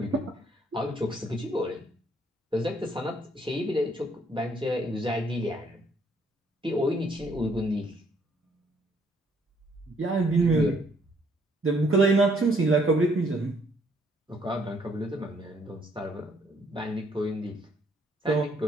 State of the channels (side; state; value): both; normal; correlation 0.67